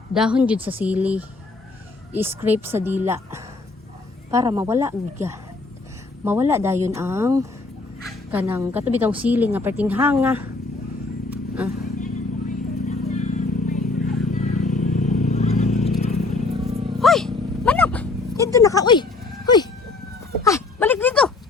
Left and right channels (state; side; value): quieter; right; 3.5 dB